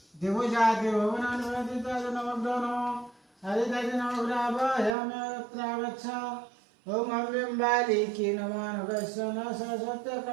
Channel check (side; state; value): left; drops out; at 5.0 s